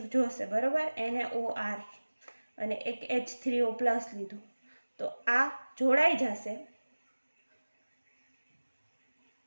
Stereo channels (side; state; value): both; inverted; correlation -1.00